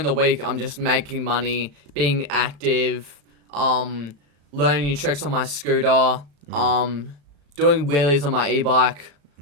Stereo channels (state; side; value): late; left; 35 ms